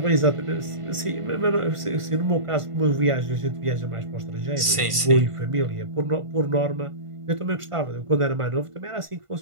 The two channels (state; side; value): late; left; 1.5 ms